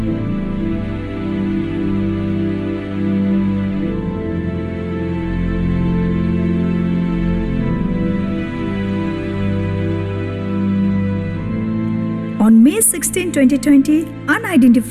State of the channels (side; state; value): both; identical; correlation 1.00